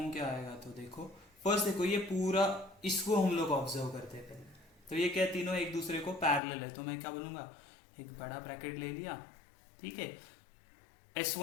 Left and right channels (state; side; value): drops out; right; at 6.4 s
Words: क्या आएगा, तो देखो फर्स्ट देखो, ये पूरा इसको हम लोग ऑब्जर्व करते हैं पहले। तो ये क्या, तीनों एक दूसरे को पैरेलल है, तो मैं क्या बोलूंगा, एक बड़ा ब्रैकेट ले लिया, ठीक है।